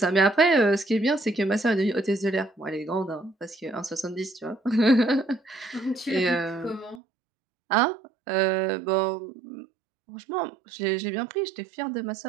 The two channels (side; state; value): left; drops out; at 7.0 s